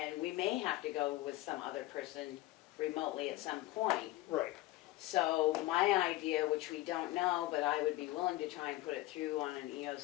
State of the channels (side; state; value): right; quieter; 17.6 dB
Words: we may have to go with some other person remotely at some point. Right. So my idea, which we don't know, but I would be willing to try and put it through on an